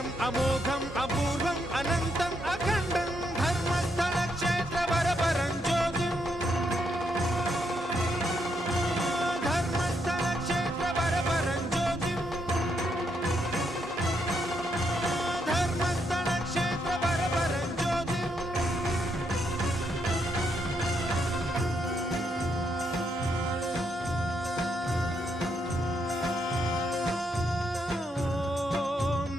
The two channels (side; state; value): both; normal; correlation 0.78